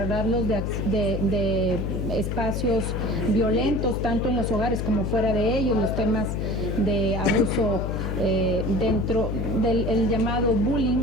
de espacios violentos, tanto en los hogares como fuera de ellos, los temas de abuso dentro del llamado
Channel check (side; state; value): left; noise; hum, 2 dB below the sound